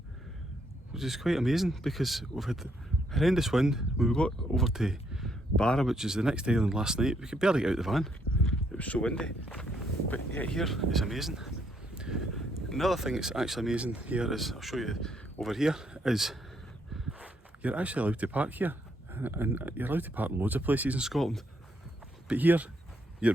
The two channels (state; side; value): normal; both; correlation 0.73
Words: which is quite amazing because we've had horrendous wind. When we got over to Barra, which is the next island, last night, we could barely get out the van, it was so windy. But yeah, here is amazing. Another thing that's actually amazing here is, I'll show you over here, is you're actually allowed to park here, and you're allowed to park in loads of places in Scotland, but here you're